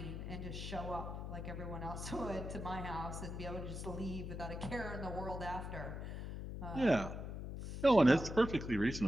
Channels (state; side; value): noise; left; hum, 6 dB below the sound